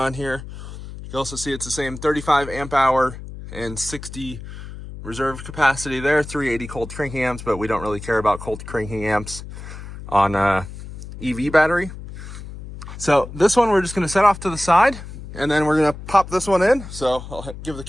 here. You can also see it's the same 35 amp hour and 60 reserve capacity there, 380 cold cranking amps, but we don't really care about cold cranking amps on EV battery. So this one we're just going to set off to the side, and then we're going to pop this one in. So I'll give the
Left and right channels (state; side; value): noise; left; hum, 12 dB below the sound